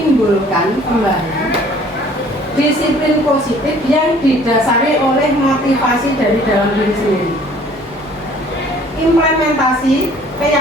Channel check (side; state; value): both; normal; correlation 0.54